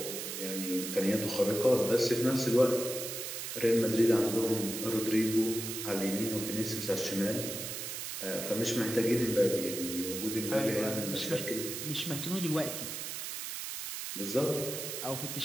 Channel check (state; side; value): noise; right; hiss, 6 dB below the sound